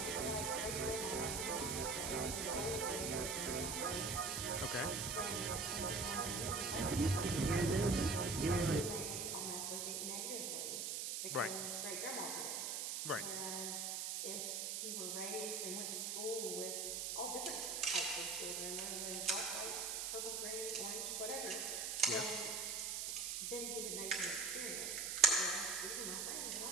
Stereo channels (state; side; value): noise; right; hiss, 1 dB below the sound